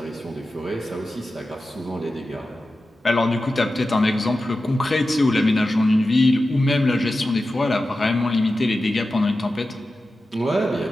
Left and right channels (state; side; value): normal; both; correlation 0.93